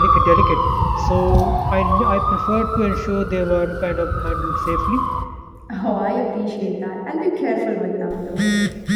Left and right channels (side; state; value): both; identical; correlation 1.00